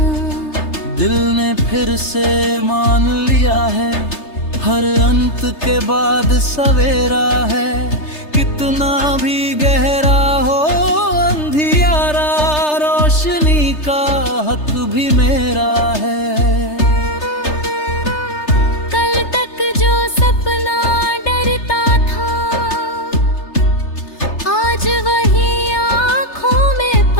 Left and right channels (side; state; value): right; late; 3.3 ms